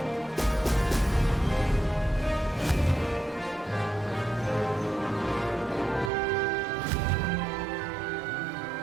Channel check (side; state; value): left; drops out; at 6.1 s